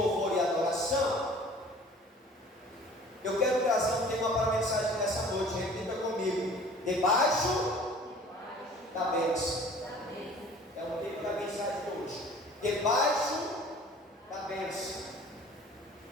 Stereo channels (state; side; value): normal; both; correlation 0.48